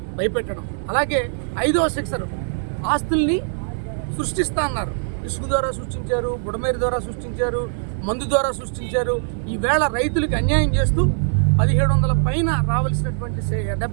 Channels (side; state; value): left; silent; digital silence